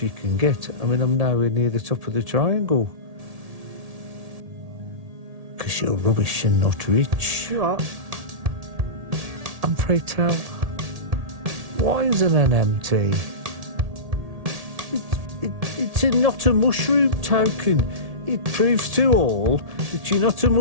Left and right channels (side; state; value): left; late; 1.7 ms